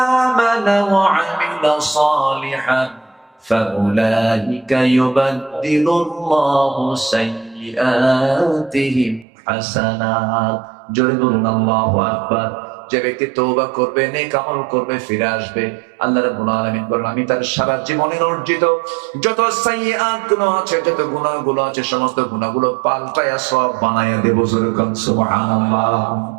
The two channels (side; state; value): left; drops out; at 9.2 s